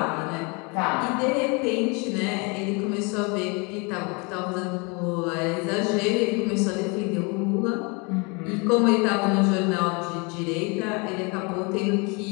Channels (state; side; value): quieter; right; 30.6 dB